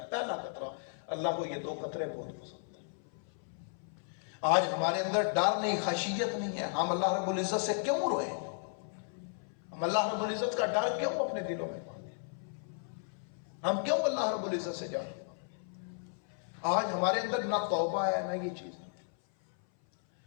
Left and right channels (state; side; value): silent; right; 55 dB below the other